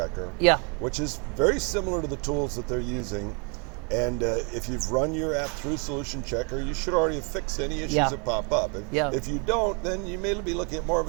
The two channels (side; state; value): left; quieter; 34.6 dB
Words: which is very similar to the tools that they're using. And if you've run your app through Solution Checker, you should already have fixed any issues that pop up. If you don't, then you may be looking at more of